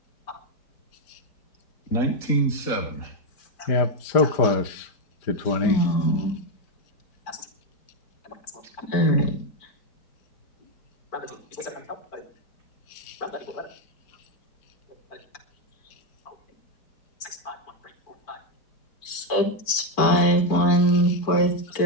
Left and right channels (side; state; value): right; late; 4.5 ms